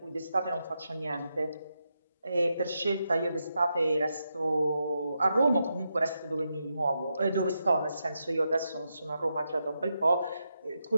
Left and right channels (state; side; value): inverted; both; correlation -0.85